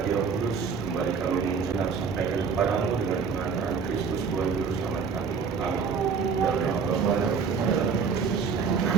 Roh Kudus. Kembali kami mengucap sampaikan kepadamu dengan pengantaran Kristus Tuhan Juru Selamat kami. Amin. Dalam nama Bapa dan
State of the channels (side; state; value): left; quieter; 5.8 dB